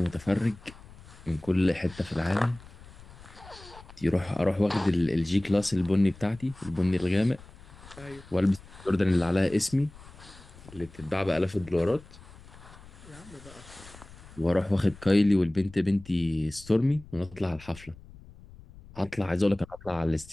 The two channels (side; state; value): left; noise; rumble, 20 dB below the sound